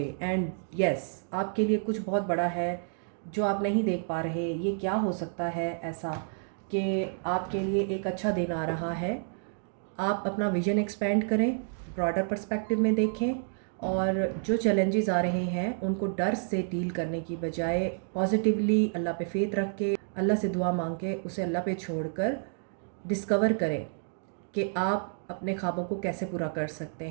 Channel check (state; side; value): silent; left; 58 dB below the other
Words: and yes, आपके लिए कुछ बहुत बड़ा है जो आप नहीं देख पा रहे। ये क्या हो सकता है ऐसा कि आपके लिए एक अच्छा दिन आ रहा है। आप अपना विजन एक्सपेंड करें, ब्रॉडर पर्सपेक्टिव में देखें, और जो चैलेंजेस आ रहे हैं उनको डर से डील करने की बजाय पॉजिटिवली अल्लाह पे फेथ रख के, अल्लाह से दुआ मांग के, उसे अल्लाह पे छोड़कर डिस्कवर करें कि आप अपने ख्वाबों को कैसे पूरा कर सकते